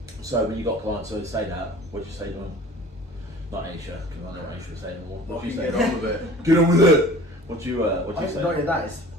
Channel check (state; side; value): normal; both; correlation 0.44